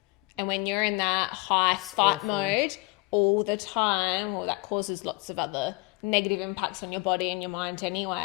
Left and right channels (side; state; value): right; quieter; 24.7 dB